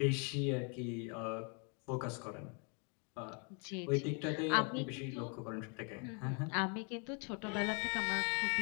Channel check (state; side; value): quieter; right; 36.7 dB